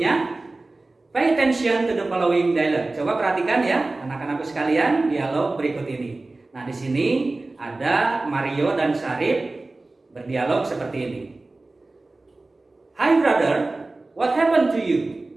Pay attention to the following dialogue. Coba perhatikan ya, anak-anakku sekalian, dialog berikut ini. Nah, di sini ada Mario dan Syarif berdialog seperti ini. Hi brother, what happened to you?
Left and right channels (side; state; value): left; quieter; 3.1 dB